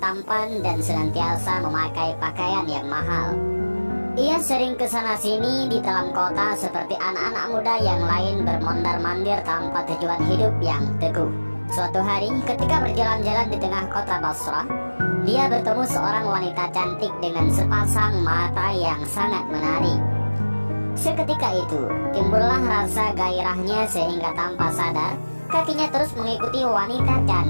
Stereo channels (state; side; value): inverted; both; correlation -1.00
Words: dan senantiasa memakai pakaian yang mahal. Ia sering kesana sini di dalam kota seperti anak-anak muda yang lain bermondar-mandir tanpa tujuan hidup yang teguh. Suatu hari ketika berjalan-jalan di tengah kota Basrah, dia bertemu seorang wanita cantik dengan sepasang mata yang sangat menarik. Seketika itu timbullah rasa gairahnya sehingga tanpa sadar kakinya terus mengikuti wanita